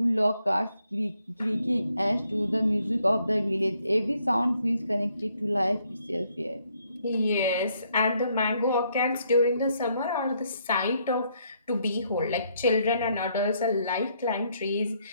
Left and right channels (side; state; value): both; inverted; correlation -0.72